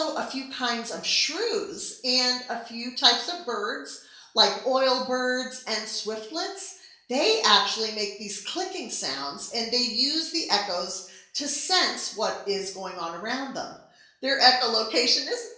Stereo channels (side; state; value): both; identical; correlation 1.00